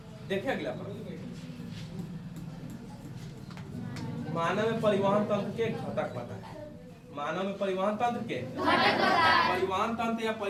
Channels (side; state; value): both; identical; correlation 1.00